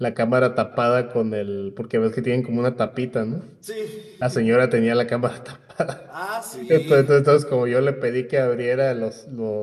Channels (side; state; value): both; identical; correlation 1.00